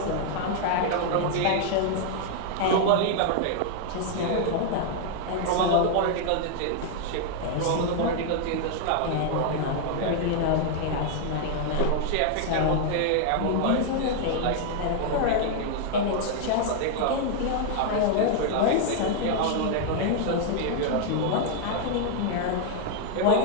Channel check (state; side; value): different; both; correlation 0.00